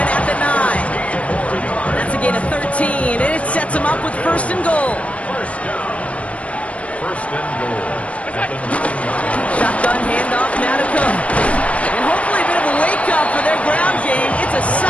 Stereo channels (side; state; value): right; late; 0.064 ms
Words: the 9. That's a gain of 13, and it sets him up with 1st and goal. First down. 1st and goal. At the 9-yard. Shotgun handoff now to Cook. And hopefully a bit of a wake-up for their ground game. It's a